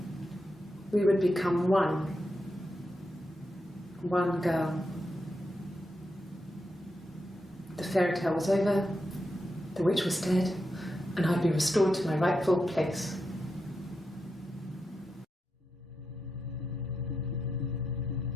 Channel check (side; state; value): both; normal; correlation 0.86